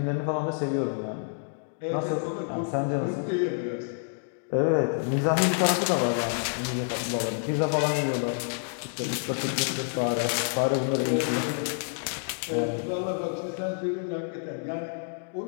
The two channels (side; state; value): right; silent; digital silence